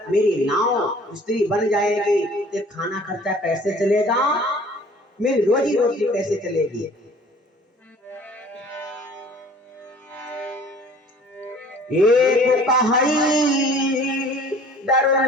मेरी नाव स्त्री बन जाएगी तो खाना खर्चा कैसे चलेगा, मेरी रोजी रोटी कैसे चलेगी। एक कहाई डर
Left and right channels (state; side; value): normal; both; correlation 0.50